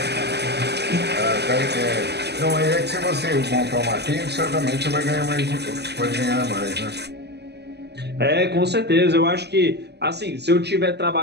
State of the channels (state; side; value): late; left; 0.49 ms